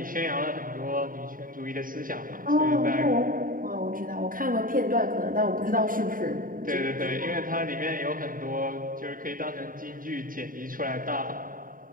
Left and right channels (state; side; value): late; left; 0.40 ms